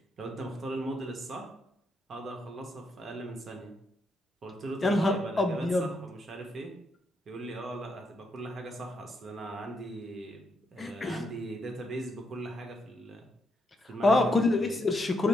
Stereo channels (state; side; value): normal; both; correlation 0.79